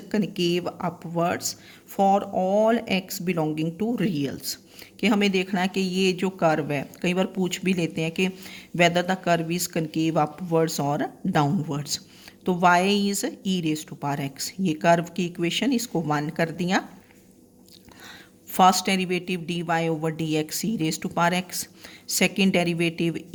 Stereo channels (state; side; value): identical; both; correlation 1.00